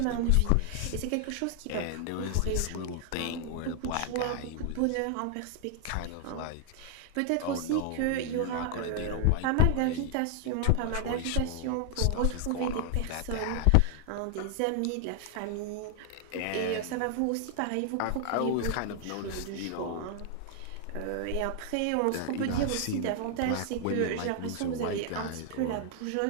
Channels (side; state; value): both; different; correlation 0.00